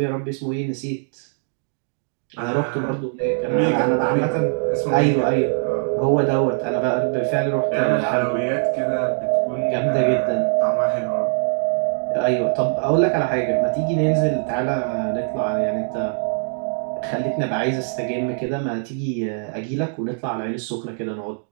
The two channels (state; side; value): silent; left; digital silence